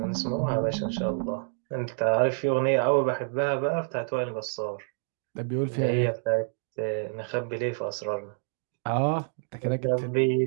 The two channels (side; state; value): left; silent; digital silence